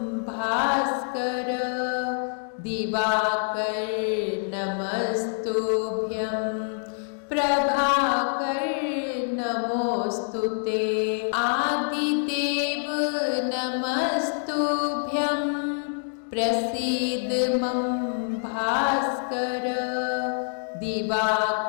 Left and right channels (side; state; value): right; silent; digital silence